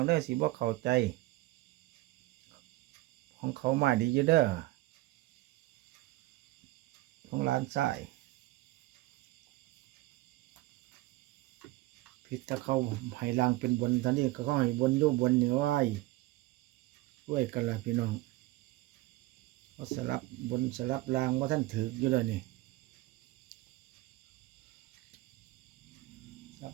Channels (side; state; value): left; quieter; 18.5 dB